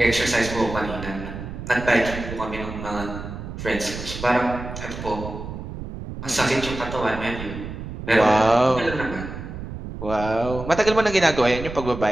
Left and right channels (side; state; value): right; noise; rumble, 9 dB below the sound